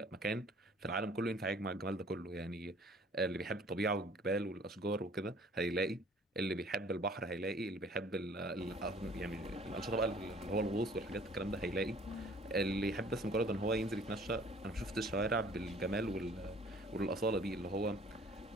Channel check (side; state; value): both; normal; correlation 0.54